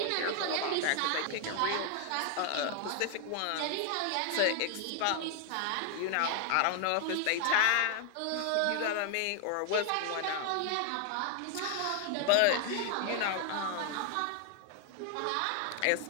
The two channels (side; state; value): both; different; correlation 0.00